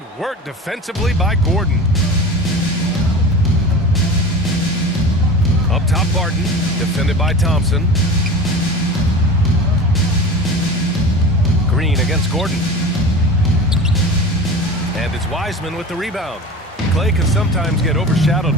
work defensively by Gordon. Up top, Barton. Defended by Thompson. Green against Gordon. And it's Wiseman with the rebound. Klay can sometimes get overshadowed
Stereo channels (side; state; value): both; normal; correlation 0.34